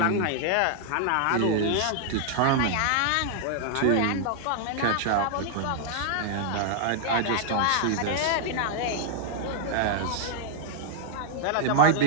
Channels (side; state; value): both; different; correlation 0.00